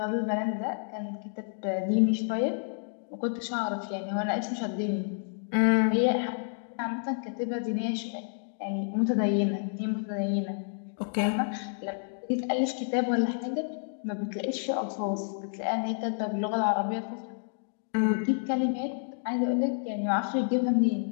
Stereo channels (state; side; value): silent; right; digital silence